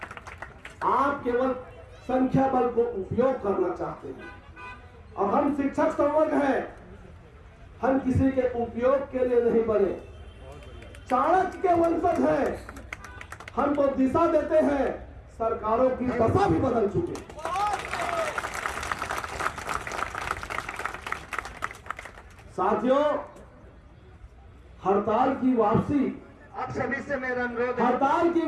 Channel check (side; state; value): both; identical; correlation 1.00